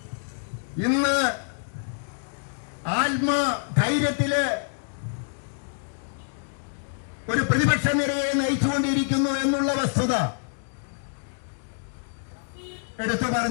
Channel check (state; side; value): silent; right; digital silence